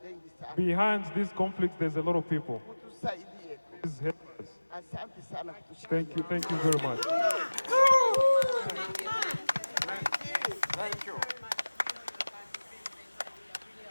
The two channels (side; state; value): both; inverted; correlation -1.00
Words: Behind these conflicts, there's a lot of people. Please help us. Thank you very much. Thank you.